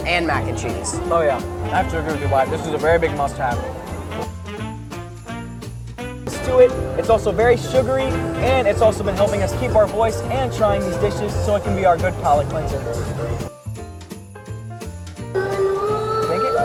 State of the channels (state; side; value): identical; both; correlation 1.00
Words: and mac and cheese. Oh yeah, I have to agree with you, Wyatt. This is a very big must-have. To it, it's also very sugary, and it's also been helping us keep our voice and trying these dishes so it can be our good palate cleanser. Think it?